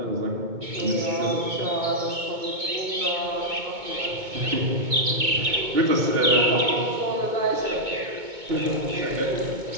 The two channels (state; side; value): late; left; 2.2 ms